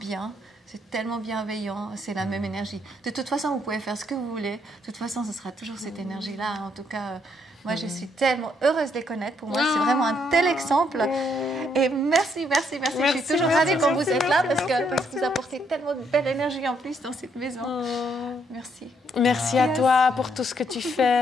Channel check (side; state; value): both; normal; correlation 0.72